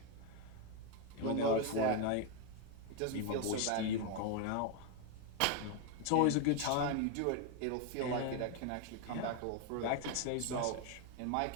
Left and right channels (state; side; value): different; both; correlation 0.01